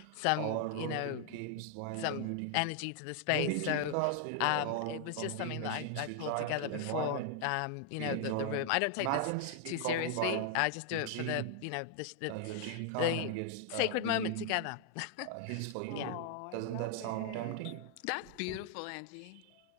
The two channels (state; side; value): different; both; correlation 0.00